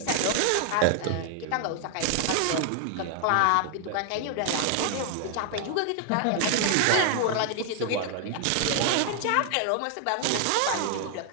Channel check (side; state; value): both; different; correlation 0.00